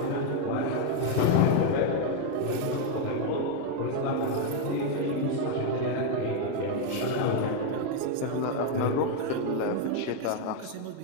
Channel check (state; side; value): different; both; correlation 0.01